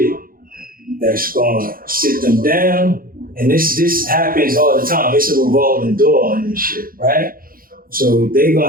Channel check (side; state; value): left; late; 0.42 ms